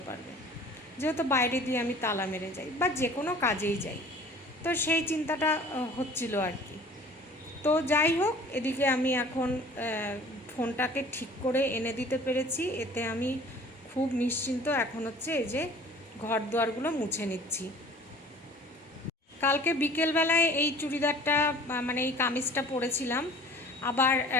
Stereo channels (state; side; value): normal; both; correlation 0.48